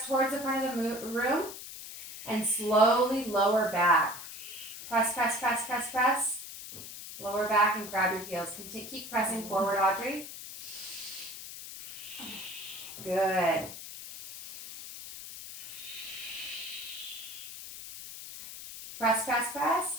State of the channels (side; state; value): left; noise; hiss, 11 dB below the sound